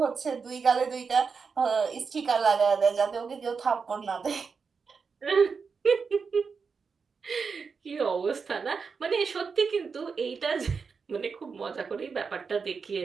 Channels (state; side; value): quieter; left; 5.4 dB